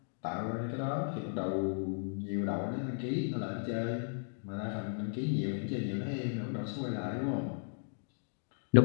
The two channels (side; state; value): right; silent; digital silence